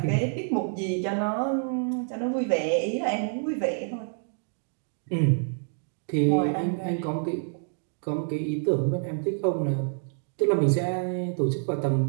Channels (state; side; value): silent; left; 60 dB below the other